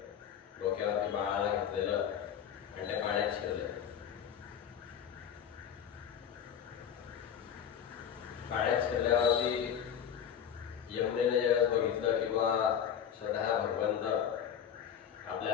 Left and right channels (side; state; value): right; quieter; 8.6 dB